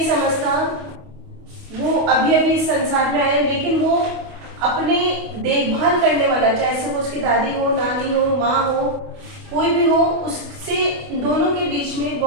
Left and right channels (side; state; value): left; late; 28 ms